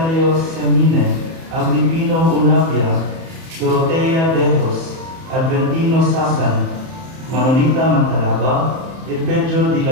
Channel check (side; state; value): left; late; 31 ms